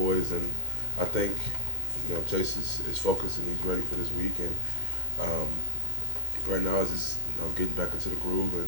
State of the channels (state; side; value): late; left; 2.1 ms